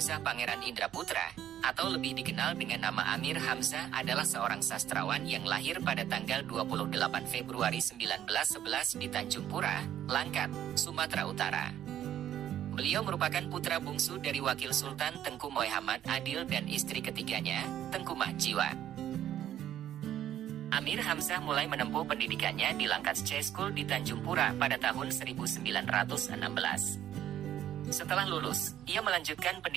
Pangeran Indra Putra, atau lebih dikenal dengan nama Amir Hamzah, adalah seorang sastrawan yang lahir pada tanggal 28 Februari 1911 di Tanjung Pura, Langkat, Sumatera Utara. Beliau merupakan putra bungsu dari Wakil Sultan Tengku Muhammad Adil dan istri ketiganya, Tengku Mahjiwa. Amir Hamzah mulai menempuh pendidikannya di Langkat School di Tanjung Pura pada tahun 1916. Setelah lulus, ia melanjutkan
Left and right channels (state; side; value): quieter; left; 10.6 dB